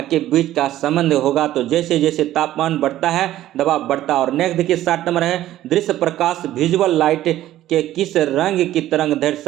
के बीच का संबंध होगा। तो जैसे जैसे तापमान बढ़ता है दबाव बढ़ता है। और नेक्स्ट देखिए 60 नंबर है, दृश्य प्रकाश विजुअल लाइट के किस रंग की तरंग दैर्घ्य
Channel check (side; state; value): left; quieter; 13.8 dB